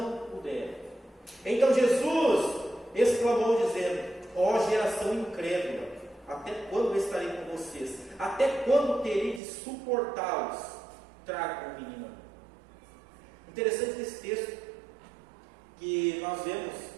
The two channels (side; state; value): left; drops out; at 9.4 s